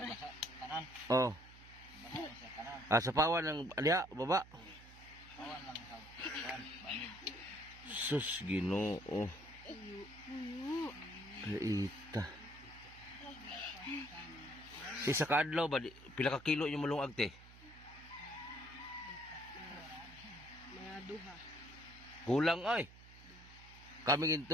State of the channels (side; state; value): right; noise; hum, 19 dB below the sound